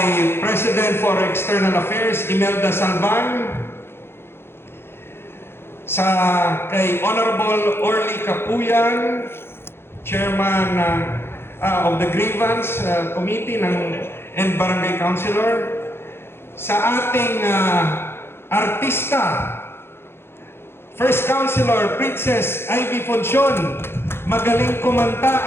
President for External Affairs, Imelda Salvan, sa kay Honorable Orly Capuyan, Chairman of the Grievance Committee and Barangay Councilor, sa ating artista, First Councilor Princess Ivy Foncion, magaling kumanta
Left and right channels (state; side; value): late; right; 0.11 ms